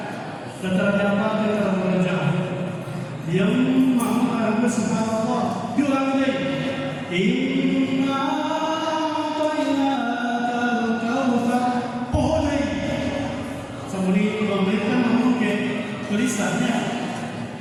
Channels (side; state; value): both; identical; correlation 1.00